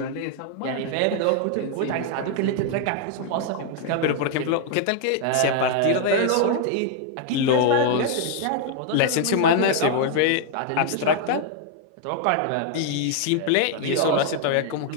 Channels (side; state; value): both; different; correlation 0.00